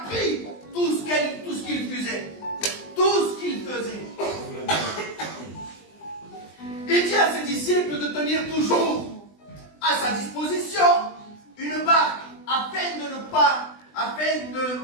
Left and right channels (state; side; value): late; right; 20 ms